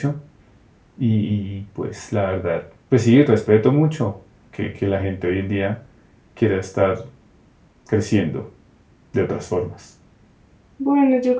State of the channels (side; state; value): both; identical; correlation 1.00